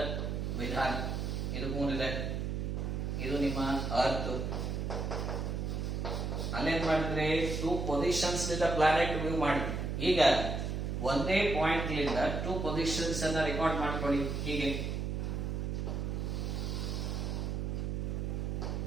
ವಿಧಾನ. ಇದು ಮೂನ್ ಇದೆ, ಇದು ನಿಮ್ಮ ಅರ್ತ್. ಅಲ್ಲೇನ್ ಮಾಡಿದ್ರೆ ಟೂ ಪೊಸಿಷನ್ಸ್ ನಿಂದ ಪ್ಲಾನೆಟ್ ವ್ಯೂ ಮಾಡಿದ್ವಿ. ಈಗ ಒಂದೇ ಪಾಯಿಂಟ್ ಲಿಂದ ಟೂ ಪೊಸಿಷನ್ಸ್ ಅನ್ನ ರೆಕಾರ್ಡ್ ಮಾಡ್ಕೊಳ್ಳಿ. ಹೀಗೆ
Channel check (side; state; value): right; noise; hum, 1 dB below the sound